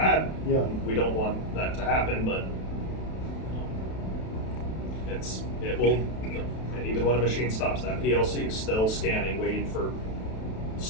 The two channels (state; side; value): late; right; 32 ms